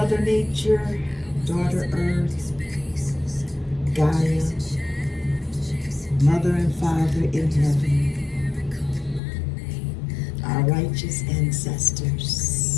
Nature, Daughter Earth, Gaia, Mother and Father in heaven, our righteous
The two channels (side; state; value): right; drops out; at 9.2 s